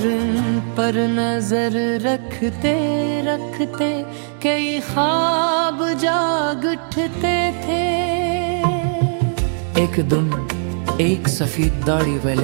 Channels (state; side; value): silent; left; digital silence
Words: इन पर नजर रखते रखते कई ख्वाब जाग उठते थे। एक दिन एक सफेद दाढ़ी